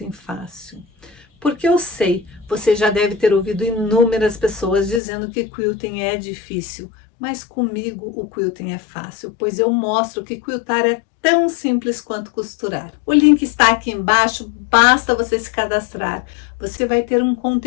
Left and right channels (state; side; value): drops out; right; at 5.0 s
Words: Fácil. Porque eu sei, você já deve ter ouvido inúmeras pessoas dizendo que quilting é difícil, mas comigo o quilting é fácil, pois eu mostro que quiltar é tão simples quanto costurar. O link está aqui embaixo, basta você se cadastrar. Você vai ter um